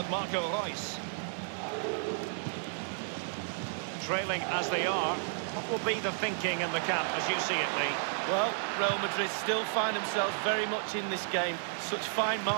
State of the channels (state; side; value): silent; left; digital silence